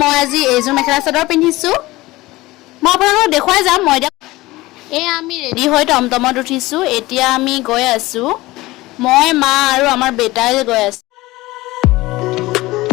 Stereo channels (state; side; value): quieter; right; 19.3 dB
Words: মই আজি এইযোৰ মেখেলা চাদৰ পিন্ধিছো। মই আপোনালোকক দেখুৱাই যাম। মই এয়া আমি ৰেডি হৈ টমটমত উঠিছো। এতিয়া আমি গৈ আছো। মই মা আৰু আমাৰ বেটাই গৈ আছো।